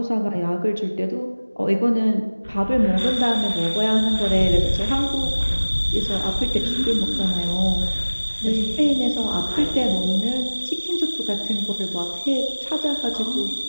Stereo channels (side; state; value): both; inverted; correlation -1.00